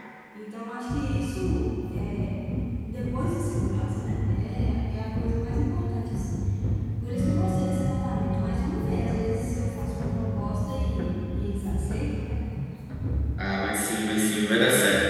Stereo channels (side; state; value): both; identical; correlation 1.00